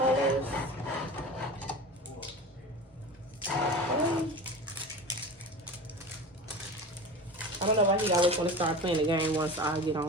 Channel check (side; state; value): both; normal; correlation 0.32